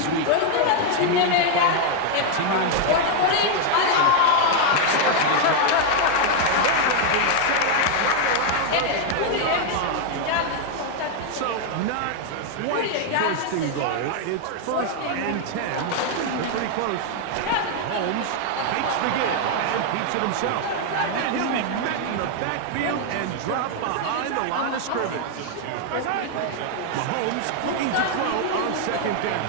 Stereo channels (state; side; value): different; both; correlation 0.00